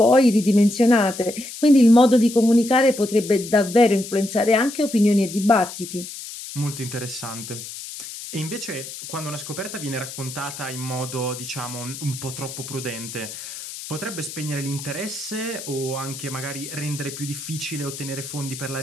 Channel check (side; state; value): left; noise; hiss, 11 dB below the sound